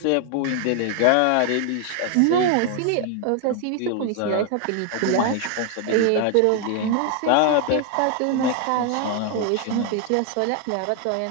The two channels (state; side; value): different; both; correlation 0.00